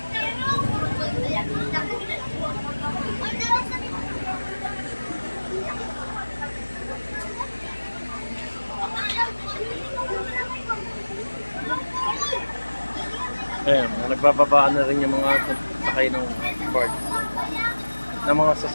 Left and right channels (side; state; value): both; inverted; correlation -1.00